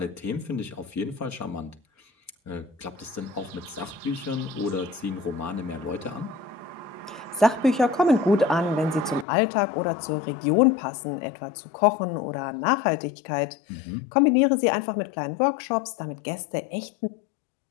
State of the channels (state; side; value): drops out; right; at 9.2 s